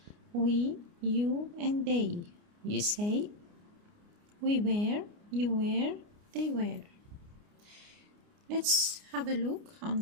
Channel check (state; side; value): late; left; 29 ms